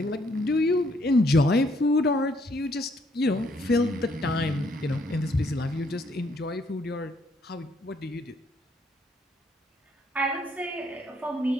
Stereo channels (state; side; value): normal; both; correlation 0.69